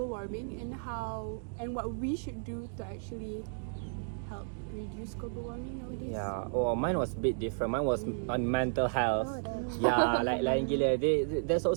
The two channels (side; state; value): left; silent; digital silence